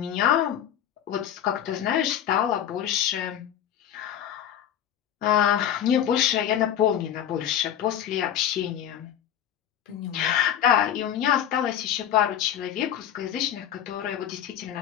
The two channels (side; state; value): right; quieter; 10.0 dB